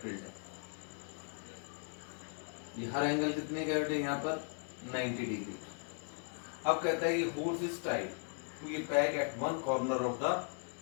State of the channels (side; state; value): right; silent; 53 dB below the other